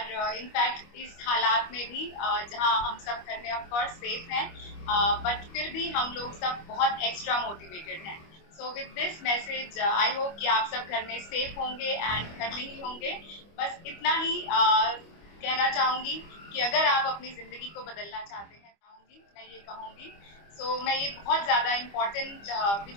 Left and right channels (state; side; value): late; right; 25 ms